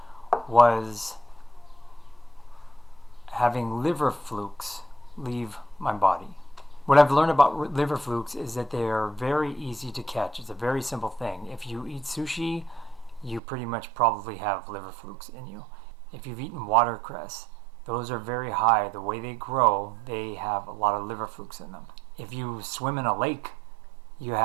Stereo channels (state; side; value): drops out; left; at 13.4 s